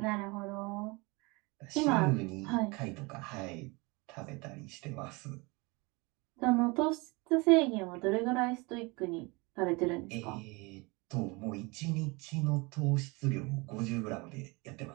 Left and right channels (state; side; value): quieter; left; 26.6 dB